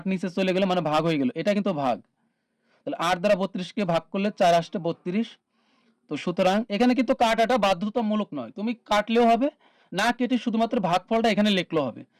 নিচে চলে গেল মানে ভাগ হয়ে গেল, এটা কিন্তু ভাগ। তাহলে 8 দ্বারা 32 কে ভাগ করলে 4 আসছে 32। তো সুতরাং এখানে কিন্তু কাটাটা বাধ্যতামূলক নয়, তুমি কাটলেও হবে, না কেটে শুধুমাত্র ভাগফলটা এখানে লিখলেও হবে।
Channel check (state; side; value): identical; both; correlation 1.00